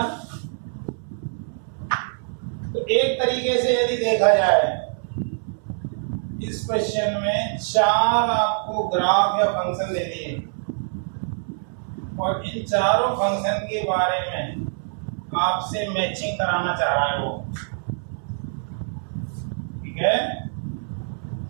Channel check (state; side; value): silent; left; 62 dB below the other